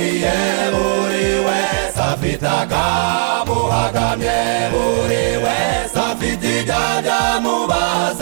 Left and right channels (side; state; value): left; silent; 62 dB below the other